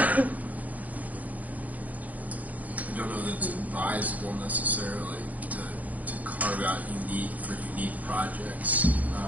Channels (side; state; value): left; late; 0.075 ms